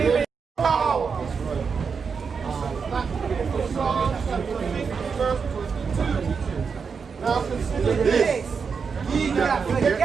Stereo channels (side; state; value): left; quieter; 5.7 dB